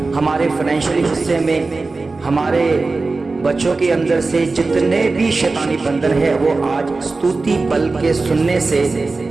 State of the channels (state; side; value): quieter; left; 3.7 dB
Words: हमारे फाइनेंशियल हिस्से में, हमारे बच्चों के अंदर से जितने भी शैतानी बंधन है वो आज स्तुति बल के सुनने से